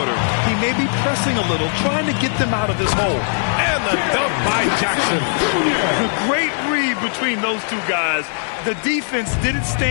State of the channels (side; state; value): right; silent; 67 dB below the other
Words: He may be pressing a little, trying to get them out of this hole. And the dunk by Jackson. A great read between those two guys. The defense didn't